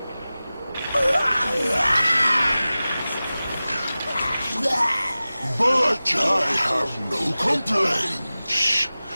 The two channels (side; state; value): both; inverted; correlation -0.97